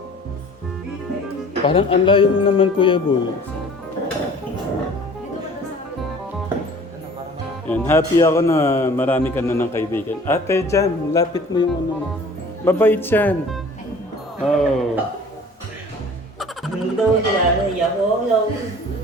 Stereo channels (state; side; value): normal; both; correlation 0.47